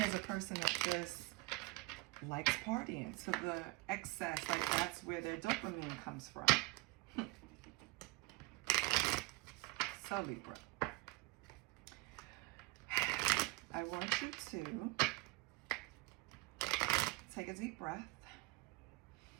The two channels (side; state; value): left; quieter; 23.0 dB